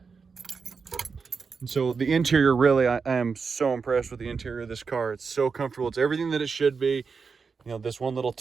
And so the interior, really, I am so impressed with the interior of this car. It's so comfortable. It's everything that it should be. You know, this one little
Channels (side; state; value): left; quieter; 5.2 dB